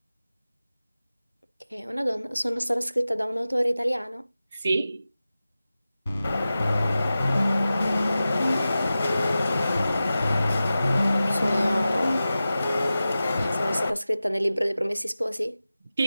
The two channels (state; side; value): inverted; both; correlation -0.94